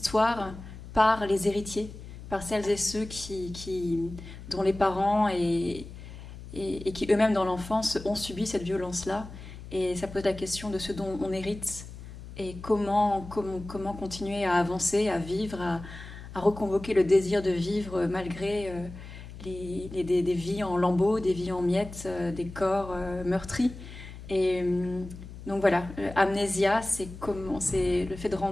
par les héritiers, par celles et ceux dont les parents et qui eux-mêmes dans l'enfance ont subi cette violence-là. Et ça pose la question de ce dont on hérite et comment continuer à avancer, à vivre, à reconvoquer le désir de vivre malgré des vies en lambeaux, des vies en miettes, des corps meurtris. Et donc voilà, Amnésia, c'est le fait de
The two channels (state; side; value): noise; left; hum, 14 dB below the sound